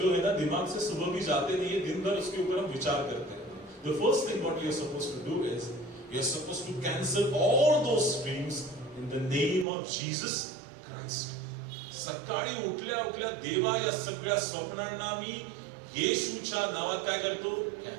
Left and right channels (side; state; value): left; drops out; at 9.7 s